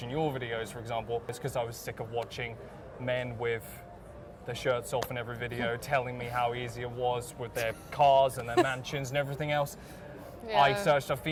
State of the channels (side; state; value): both; identical; correlation 1.00